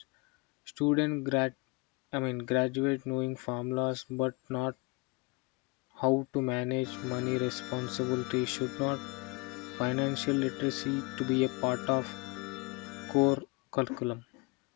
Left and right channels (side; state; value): right; quieter; 28.0 dB